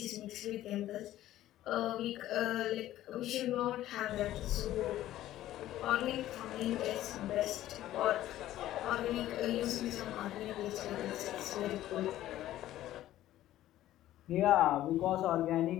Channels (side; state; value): right; quieter; 13.8 dB